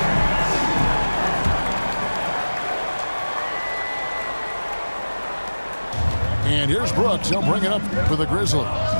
And here's Brooks. He'll bring it up for the Grizzlies.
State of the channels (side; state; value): both; inverted; correlation -1.00